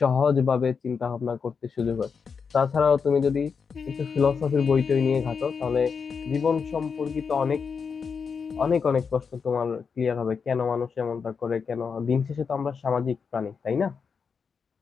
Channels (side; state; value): right; quieter; 5.8 dB